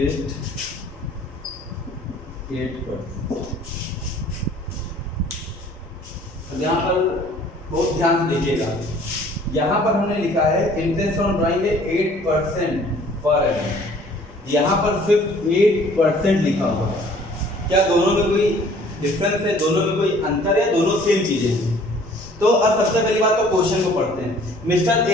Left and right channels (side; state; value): both; normal; correlation 0.54